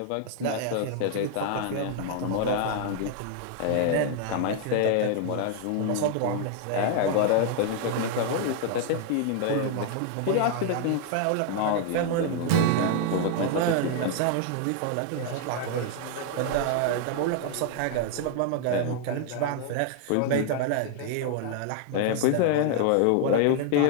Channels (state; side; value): different; both; correlation 0.00